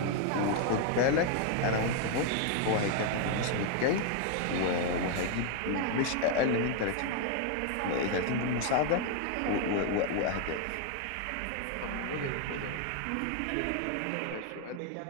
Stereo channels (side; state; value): both; different; correlation 0.00